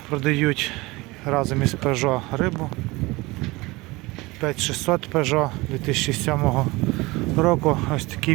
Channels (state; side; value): quieter; left; 22.2 dB